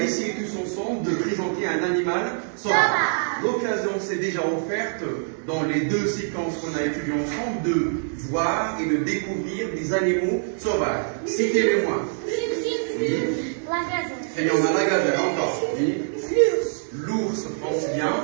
essayer tous ensemble de présenter un animal sauvage. L'occasion s'est déjà offerte dans les deux séquences qu'on a étudiées ensemble de voir et de découvrir des animaux sauvages. Citez-les-moi. Oui. Et on a la gazelle encore. Oui. L'ours, pense bien.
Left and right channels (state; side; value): silent; left; digital silence